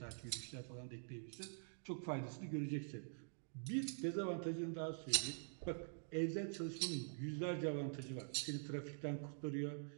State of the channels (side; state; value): left; silent; digital silence